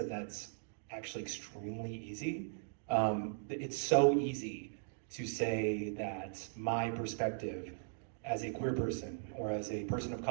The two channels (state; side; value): silent; left; digital silence